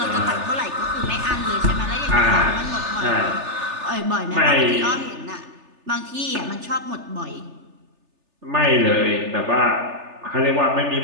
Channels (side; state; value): left; late; 3.3 ms